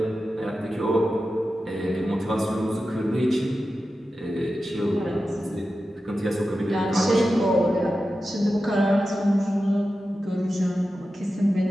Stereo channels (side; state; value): both; normal; correlation 0.92